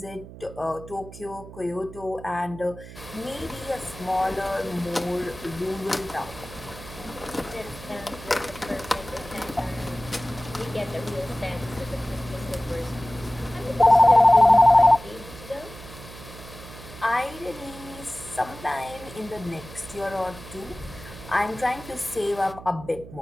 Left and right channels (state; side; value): noise; right; hum, 15 dB below the sound